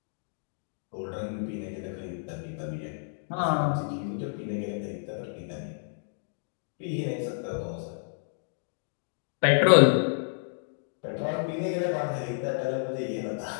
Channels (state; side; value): silent; right; digital silence